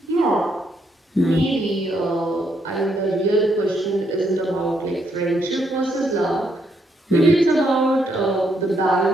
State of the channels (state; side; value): normal; both; correlation 0.75